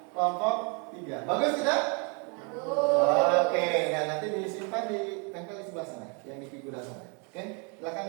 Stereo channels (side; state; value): left; quieter; 35.2 dB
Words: kelompok 3. Bagus tidak? Bagus. Oke, nah nanti disimpan ditempel di sebelah sana, yang di figura sana. Oke,